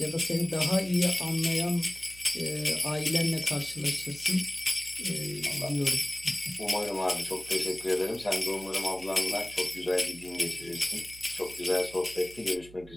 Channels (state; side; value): noise; right; hum, 20 dB below the sound